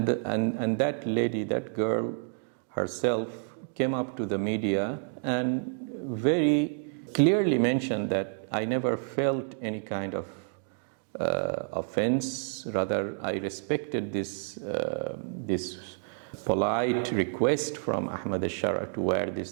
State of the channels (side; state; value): left; silent; 58 dB below the other